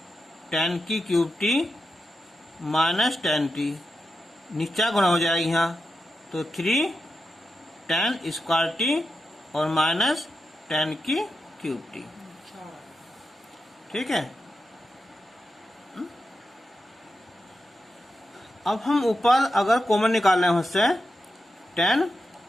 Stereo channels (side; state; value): both; normal; correlation 0.88